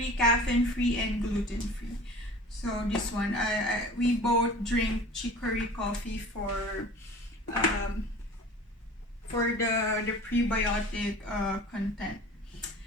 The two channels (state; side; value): normal; both; correlation 0.42